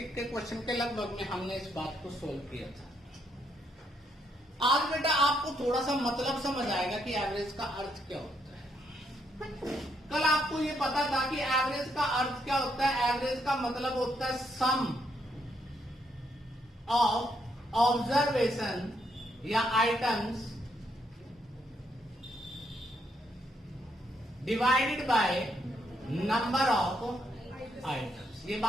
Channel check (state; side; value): normal; both; correlation 0.75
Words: के क्वेश्चन के लगभग में हमने इस बात को सोल्व किया था। आज बेटा आपको थोड़ा सा मतलब समझ आएगा कि एवरेज का अर्थ क्या होता है। कल आपको ये पता था कि एवरेज का अर्थ क्या होता है। एवरेज का मतलब होता है सम ऑफ ऑब्जर्वेशन या items divided by number of items. ये